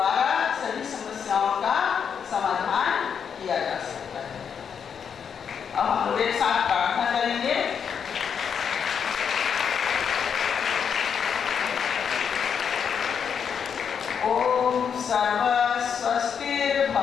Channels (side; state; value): right; quieter; 7.2 dB